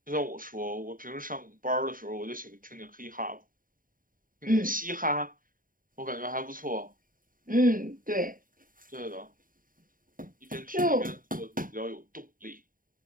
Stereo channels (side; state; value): left; late; 0.40 ms